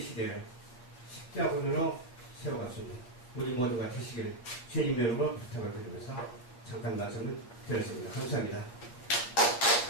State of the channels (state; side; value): late; right; 8.2 ms